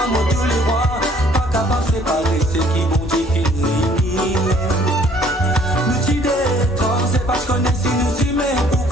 tous les rois. Séparer ceux qui vont définir. Nous t'y détends, c'est parce qu'on est si nous y met pour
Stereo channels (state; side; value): normal; both; correlation 0.59